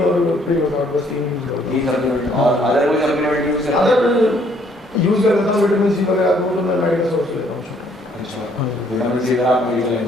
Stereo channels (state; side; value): normal; both; correlation 0.65